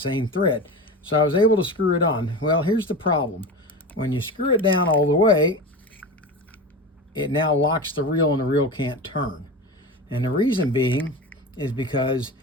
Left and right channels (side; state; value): both; normal; correlation 0.27